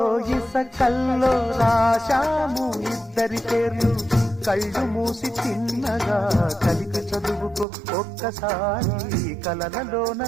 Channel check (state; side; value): drops out; left; at 7.7 s